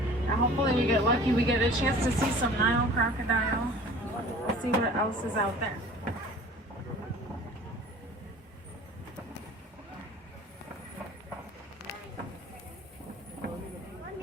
hopefully we get lucky, we get a chance to see some Nile crocodile. Let's see what else is out there.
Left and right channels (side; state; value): both; normal; correlation 0.45